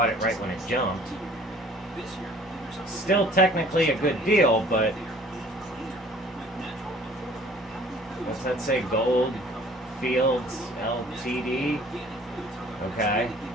it right when it jumped. Still technically a good deal, but what's that say? Gold Fields Ltd. Okay.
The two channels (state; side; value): normal; both; correlation 0.53